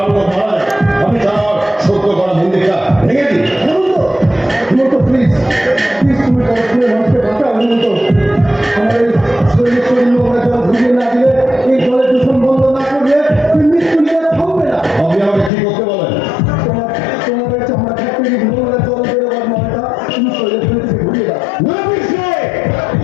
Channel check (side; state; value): right; drops out; at 15.5 s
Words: যায়, আপনি চান সত্য করা মন্দিরটা ভেঙে দিন। হেমন্ত প্লিজ প্লিজ তুমি মানুষকে বাঁচাও হেমন্ত। আমার এই শরীর আমরা জল ভিজিয়ে না দিলে, এই জলের দূষণ বন্ধ না করলে মৃত্যু নিয়ে থামবে না। আপনি আমাকে কি করতে বলেন? তোমাদের চামড়া ফ্যাক্টরি ভূমিরা জল বেরোবার মনটা তুমি শরীরে ফেলে ঘুরিয়ে দাও। না